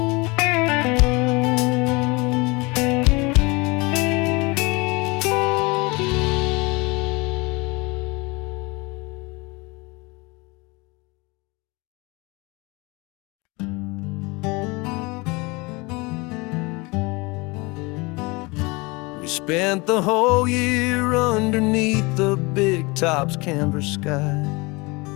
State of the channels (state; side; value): quieter; right; 25.9 dB